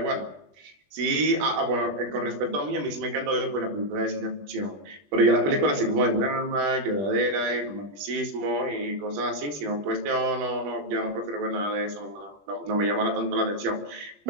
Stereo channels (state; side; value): late; left; 20 ms